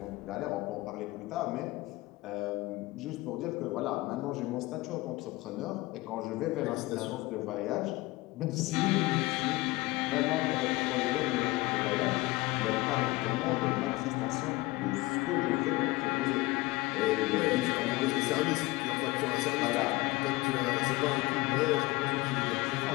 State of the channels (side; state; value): right; quieter; 20.7 dB